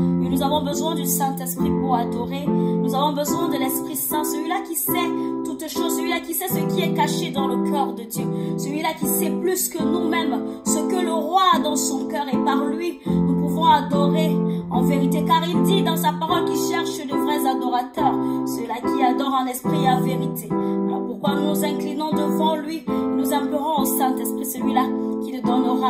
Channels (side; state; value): both; identical; correlation 1.00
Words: Et nous avons besoin du Saint-Esprit pour adorer. Nous avons besoin de l'Esprit Saint, celui-là qui sait toutes choses, celui-là qui sait ce qui est caché dans le cœur de Dieu, celui-là qui sait plus que nous-mêmes ce que le roi a dans son cœur, et par lui nous pouvons adorer en vérité, car il dit dans sa parole qu'il cherche de vrais adorateurs, ceux-là qui adorent en esprit et en vérité. Alors pourquoi nous nous inclinons devant lui, nous implorons au Saint-Esprit, celui-là qui nous